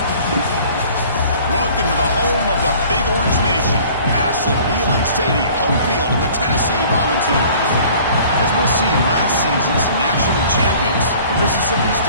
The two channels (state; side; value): inverted; both; correlation -0.50